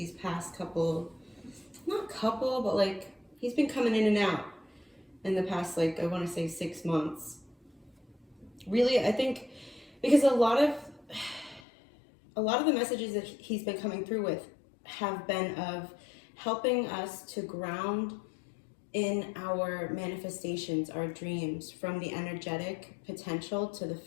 past couple, but like he's been coming in and out in the past, like, I want to say 6 months. Really, I think because a lot of the messages that he's been coming through with have been of helping us to ground in our manifestations, our dreams, from the energetic potential to the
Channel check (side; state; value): right; drops out; at 11.6 s